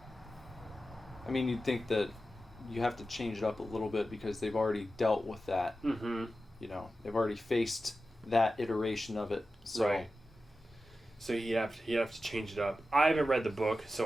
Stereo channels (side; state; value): both; normal; correlation 0.93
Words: I mean, you'd think that you have to change it up a little bit because they've already dealt with that. Mm-hmm. You know, they've already faced that iteration of it. So. Right. So you have to change it up. I haven't read the book,